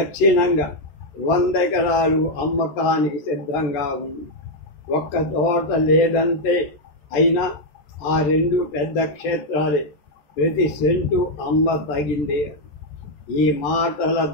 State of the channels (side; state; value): right; late; 13 ms